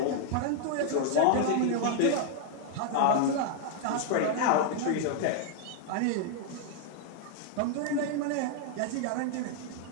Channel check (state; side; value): different; both; correlation -0.01